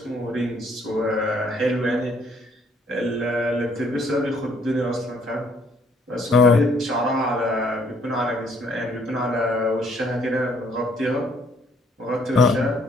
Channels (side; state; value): both; normal; correlation 0.65